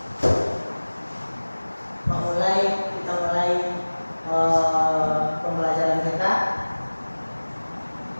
Kita mulai pembelajaran kita.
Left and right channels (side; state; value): both; inverted; correlation -1.00